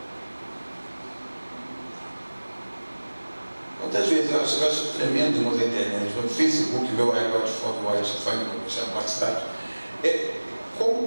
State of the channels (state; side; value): inverted; both; correlation -1.00